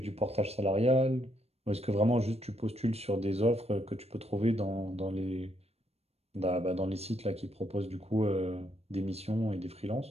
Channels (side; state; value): left; late; 0.30 ms